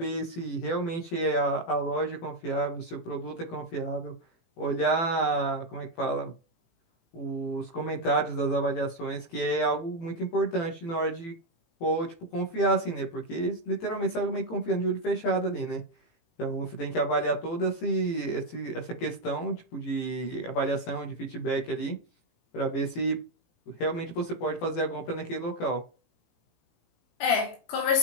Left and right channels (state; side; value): late; right; 18 ms